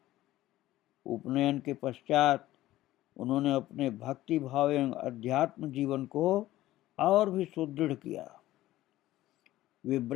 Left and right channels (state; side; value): quieter; right; 15.5 dB